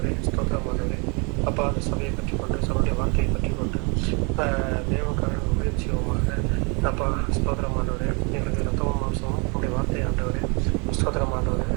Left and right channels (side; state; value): left; quieter; 32.6 dB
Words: ஸ்தோத்திரமானவரே, அப்பா அந்த சபையை பற்றி கொண்டு சபையுடைய வார்த்தையை பற்றி கொண்டு தேவனுக்காக ஊழியம் செய்வோமாக. அப்பா ஸ்தோத்திரமானவரே, எங்களுக்கு ரத்தமும் மாம்சமும் உடைய வார்த்தை ஆண்டவரே ஸ்தோத்திரமானவரே,